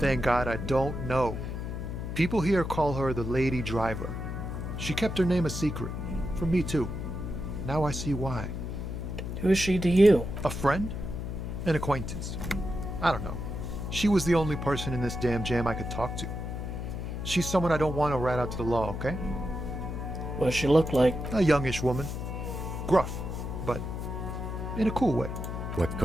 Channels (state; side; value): noise; left; hum, 5 dB below the sound